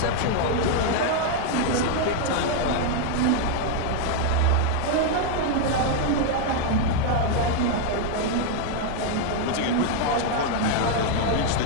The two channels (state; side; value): different; both; correlation 0.00